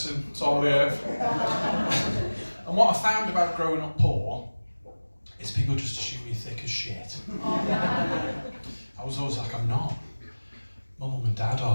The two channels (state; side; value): inverted; both; correlation -1.00